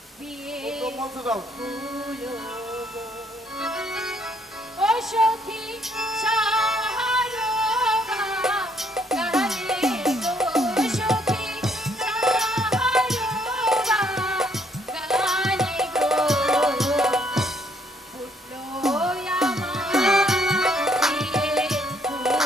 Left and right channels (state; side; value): normal; both; correlation 0.68